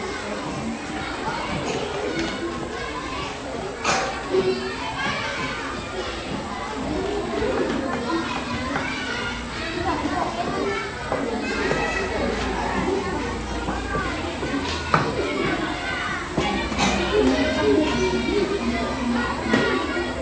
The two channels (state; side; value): identical; both; correlation 1.00